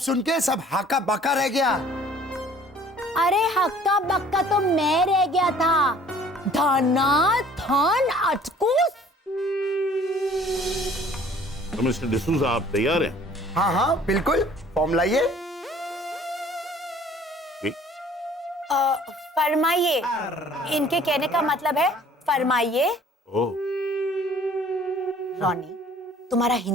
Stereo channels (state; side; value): normal; both; correlation 0.54